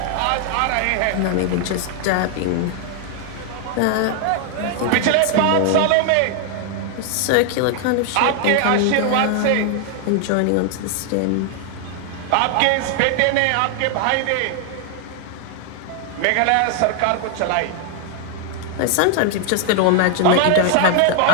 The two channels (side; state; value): both; different; correlation 0.00